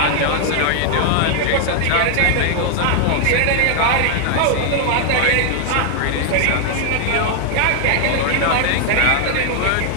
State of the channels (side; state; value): both; different; correlation 0.00